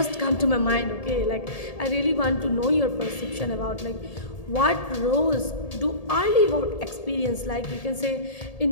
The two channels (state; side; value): late; right; 1.8 ms